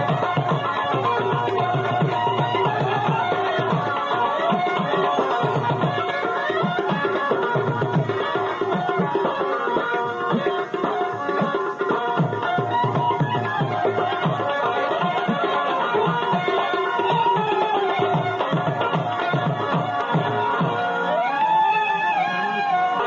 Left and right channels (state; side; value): identical; both; correlation 1.00